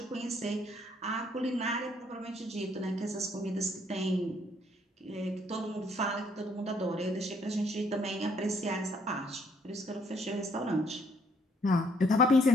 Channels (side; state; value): both; normal; correlation 0.67